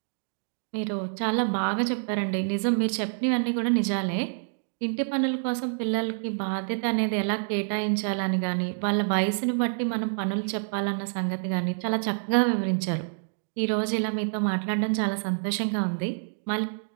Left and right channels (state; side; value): silent; left; digital silence